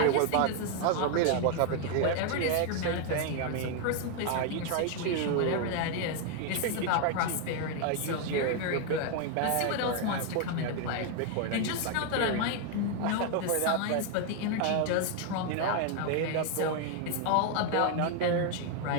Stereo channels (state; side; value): different; both; correlation 0.01